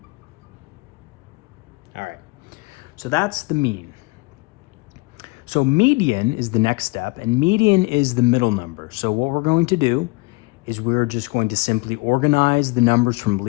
All right, so that's the mean. So median is the next step, and median is the middle number. So what we're going to do is we're just going to simply organize the numbers from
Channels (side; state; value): right; quieter; 25.8 dB